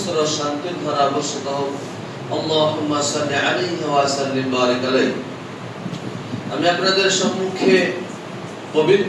শান্তির ধারা বর্ষিত হোক। আল্লাহুম্মা সাল্লি আলাইহি ওয়া সাল্লিম বারিক আলাইহি। আমি আপনাদের সম্মুখে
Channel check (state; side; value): identical; both; correlation 1.00